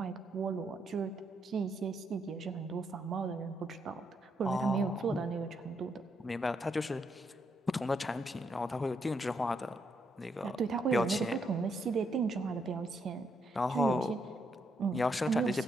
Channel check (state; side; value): normal; both; correlation 0.77